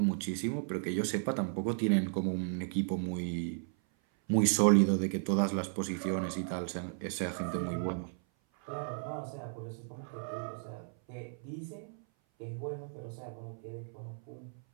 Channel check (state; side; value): silent; left; 55 dB below the other